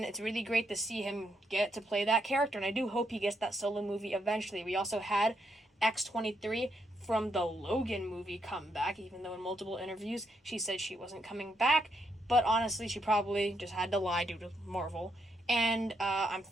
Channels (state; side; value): normal; both; correlation 0.78